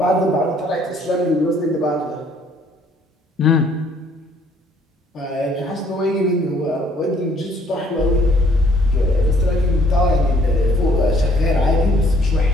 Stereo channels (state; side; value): normal; both; correlation 0.62